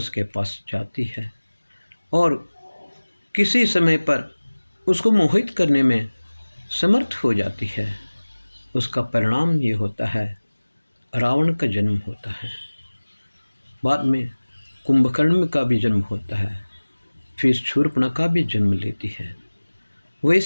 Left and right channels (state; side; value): inverted; both; correlation -1.00